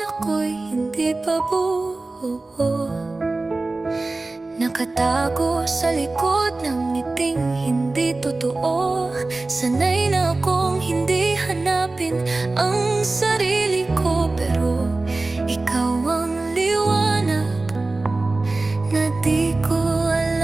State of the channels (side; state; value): left; quieter; 3.2 dB